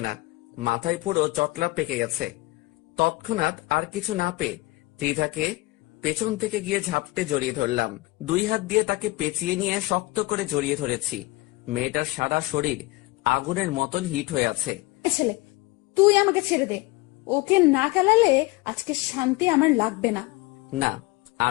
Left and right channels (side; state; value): right; quieter; 21.2 dB